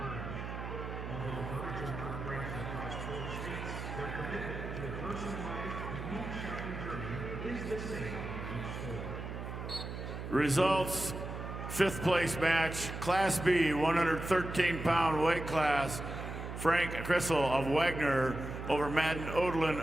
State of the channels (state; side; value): noise; right; hum, 7 dB below the sound